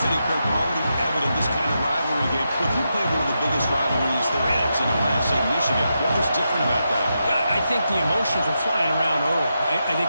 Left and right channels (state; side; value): inverted; both; correlation -0.86